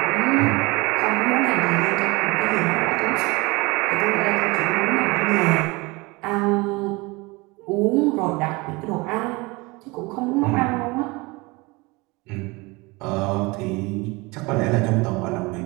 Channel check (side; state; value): left; quieter; 24.6 dB